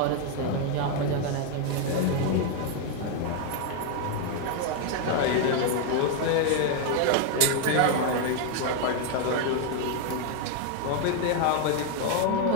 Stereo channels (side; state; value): both; different; correlation 0.01